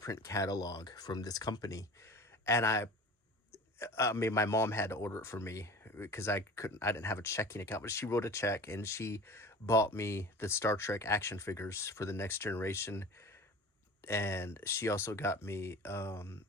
catalog from this company. And I mean, my mom had to order it for me because I didn't have a checking account, but she wrote a check and she bought me the Star Trek action figures for The Next Generation. And she also got me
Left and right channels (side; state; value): both; normal; correlation 0.39